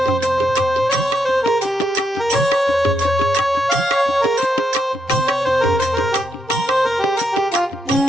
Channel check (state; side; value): normal; both; correlation 0.79